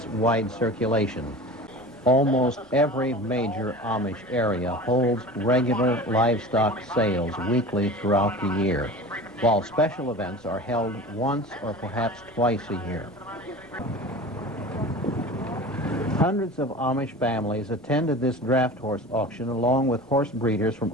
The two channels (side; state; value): both; normal; correlation 0.36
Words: wide circulation. Almost every major Amish area holds regular livestock sales weekly throughout the year, while special events are held once or perhaps twice a year. Hundreds of Amish families attended this draft horse auction along with horse breeders from